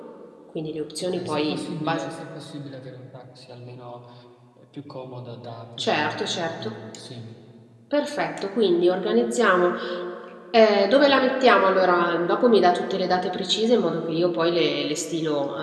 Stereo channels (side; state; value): both; identical; correlation 1.00